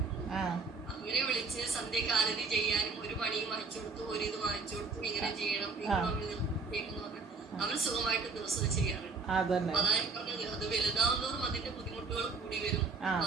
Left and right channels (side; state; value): left; quieter; 4.3 dB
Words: അവരെ വിളിച്ച് സന്ധ്യക്ക് ആരതി ചെയ്യാനും ഒരു പണിയും വാങ്ങിച്ചു കൊടുത്തു, ഒരു ഇത് വാങ്ങിച്ചു കൊടുത്തു, ഇങ്ങനെ ചെയ്യണം അവർ സുഖമായിട്ട് ദിവസം ചെയ്യാറുണ്ട്. അതായത് പറഞ്ഞത് അത് വലുതാവുന്നതോറും അതിന്റെ ബുദ്ധിമുട്ടുകൾ കൂടി വരും.